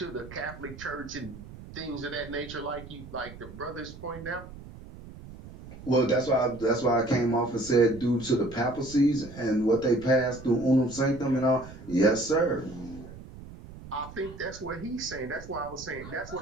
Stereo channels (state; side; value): noise; right; rumble, 15 dB below the sound